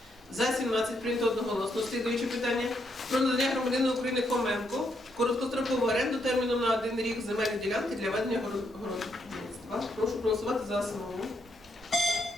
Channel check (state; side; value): normal; both; correlation 0.77